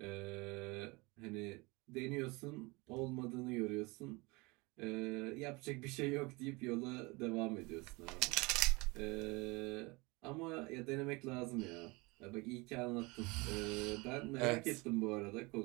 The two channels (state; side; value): quieter; left; 25.5 dB